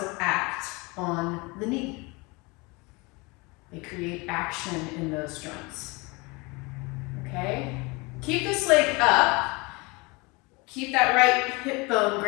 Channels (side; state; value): right; quieter; 26.5 dB